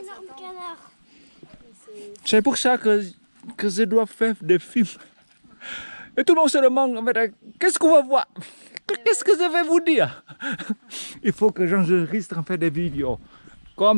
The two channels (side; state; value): both; inverted; correlation -1.00